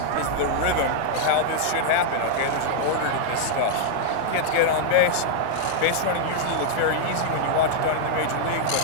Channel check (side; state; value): both; different; correlation -0.01